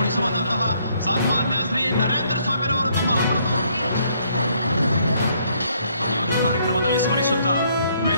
ಸನ್ಮಾನ್ಯ ಶ್ರೀ ನರೇಂದ್ರ ಸ್ವಾಮಿರವರು ತಮ್ಮ ಅಮೃತ ಈ ಒಂದು ಕಾರ್ಯಕ್ರಮದಲ್ಲಿ ಸ್ಮರಿಸುತ್ತಾ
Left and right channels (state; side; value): inverted; both; correlation -0.68